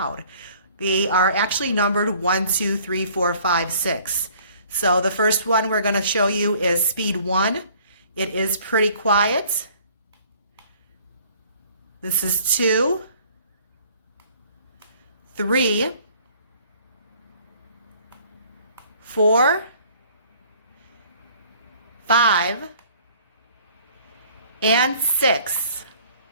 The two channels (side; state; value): both; inverted; correlation -0.55